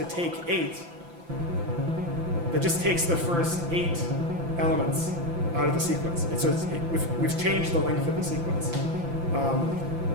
take 8, that just takes the first 8 elements out of the sequence. We've changed the length of the sequence.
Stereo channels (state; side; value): late; left; 5.9 ms